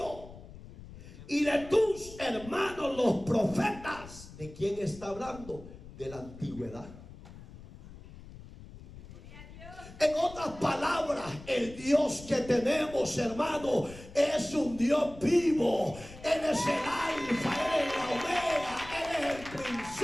y de tus hermanos los profetas. ¿De quién está hablando? De la antigüedad. En otras palabras, el Dios que tenemos, hermano, es un Dios vivo. Él es el alfa, Él es la omega, Él es el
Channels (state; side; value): noise; left; rumble, 16 dB below the sound